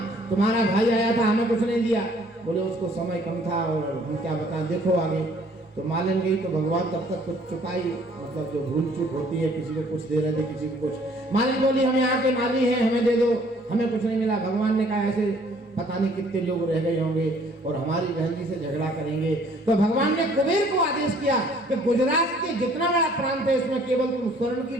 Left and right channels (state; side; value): normal; both; correlation 0.59